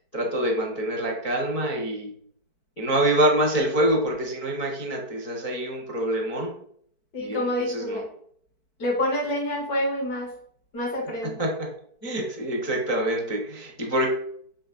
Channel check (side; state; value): right; late; 4.6 ms